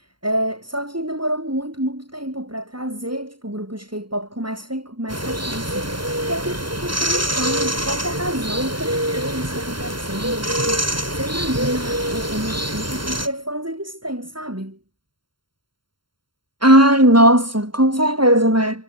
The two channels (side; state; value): left; late; 0.73 ms